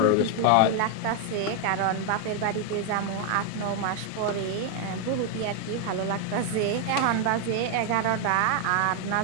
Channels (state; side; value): different; both; correlation 0.00